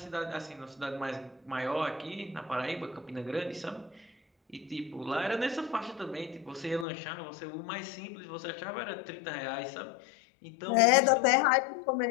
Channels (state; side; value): drops out; right; at 6.9 s